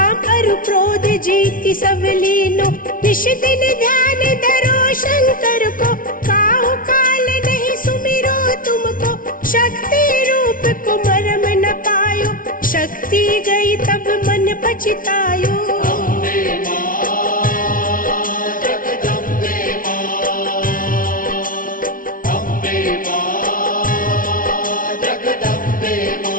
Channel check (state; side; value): late; right; 0.40 ms